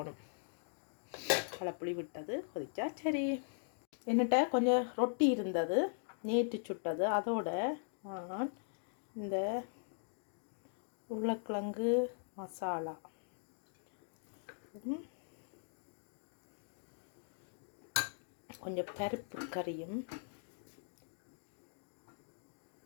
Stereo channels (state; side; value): silent; right; digital silence